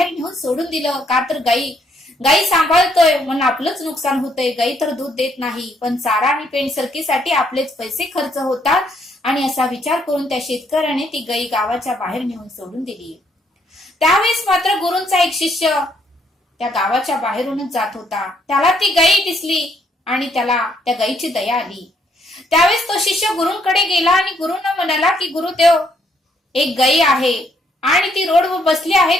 नेऊन सोडून दिलं. का तर गायी सांभाळतोय म्हणून आपलंच नुकसान होतंय. गायी तर दूध देत नाही, पण चारा आणि पेंट सरकीसाठी आपलेच पैसे खर्च होतात. आणि असा विचार करून त्या शेतकऱ्याने ती गायी गावाच्या बाहेर नेऊन सोडून दिली. त्यावेळेस मात्र गुरूंचा एक शिष्य त्या गावाच्या बाहेरूनच जात होता. त्याला ती गायी दिसली आणि त्याला त्या गायीची दया आली. त्यावेळेस तो शिष्य गुरूंकडे गेला आणि गुरूंना म्हणाला की गुरुदेव, एक गायी आहे आणि ती रोडवर बसली आहे,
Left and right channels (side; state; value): both; normal; correlation 0.70